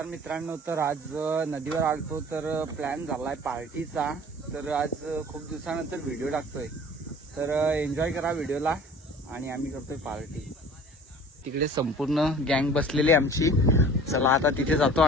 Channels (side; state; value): both; normal; correlation 0.45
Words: मित्रांनो, तर आज नदीवर आलतो तर प्लॅन झालाय पार्टीचा. तर आज खूप दिवसानंतर व्हिडिओ टाकतोय, तर एन्जॉय करा व्हिडिओला. आणि आम्ही करतोय पार्टी. तिकडे संपूर्ण गँग बसलेली आमची. चला आता तिथे जातो